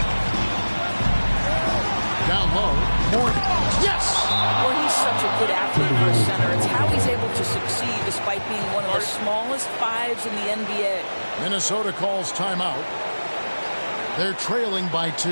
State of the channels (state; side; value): inverted; both; correlation -1.00